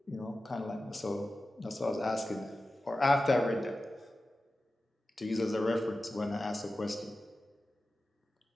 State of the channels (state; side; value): normal; both; correlation 0.94